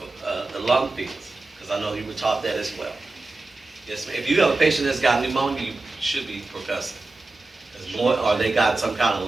lung fields, because I know you were taught that as well. Yes, ma'am. If you have a patient that's got pneumonia, you should be percussing. Or they got some kind of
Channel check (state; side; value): quieter; left; 3.3 dB